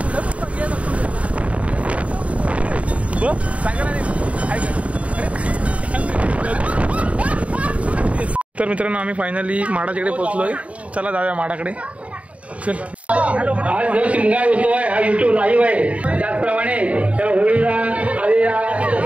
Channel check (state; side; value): late; left; 0.065 ms